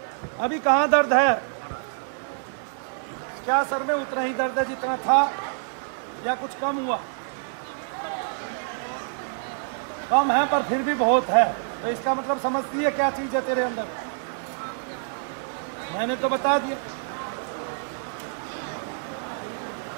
अभी कहाँ दर्द है? क्या सर में उतना ही दर्द है जितना था या कुछ कम हुआ? कम है पर फिर भी बहुत है, तो इसका मतलब समझती है क्या चीज है तेरे अंदर? मैंने तो बता दिया।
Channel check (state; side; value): silent; left; 61 dB below the other